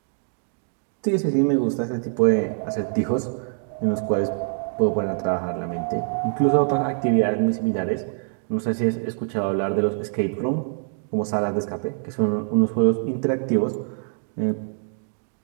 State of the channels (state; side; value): silent; left; 62 dB below the other